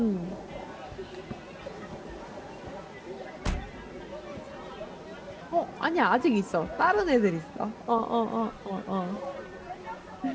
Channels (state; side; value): identical; both; correlation 1.00